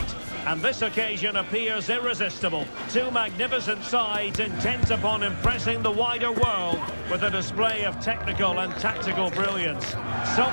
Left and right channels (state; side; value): inverted; both; correlation -1.00